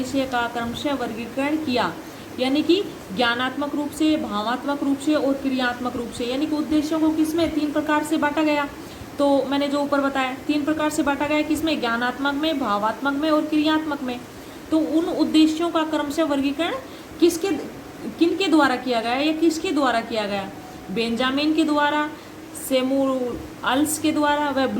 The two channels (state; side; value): identical; both; correlation 1.00